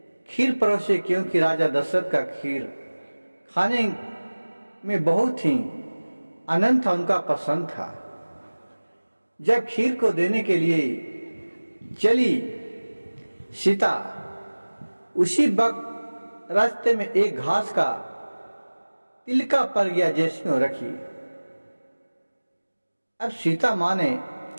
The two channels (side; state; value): both; inverted; correlation -1.00